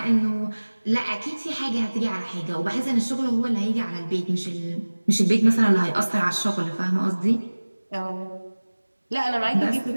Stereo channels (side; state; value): both; inverted; correlation -1.00